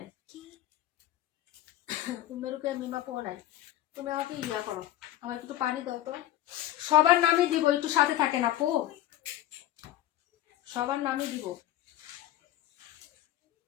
মেরুকে মিমাপু নাই। তুমি আমাকে ইয়া করো, আমার একটু পানি দাও তো। সবার নামই দিব, একটু সাথে থাকেন আপু, সবার নামই দিব।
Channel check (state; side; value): quieter; right; 13.7 dB